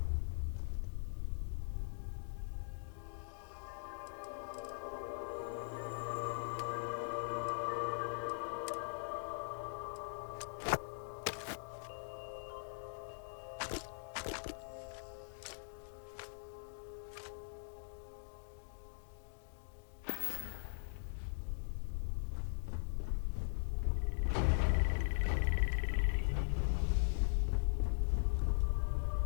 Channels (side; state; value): right; silent; digital silence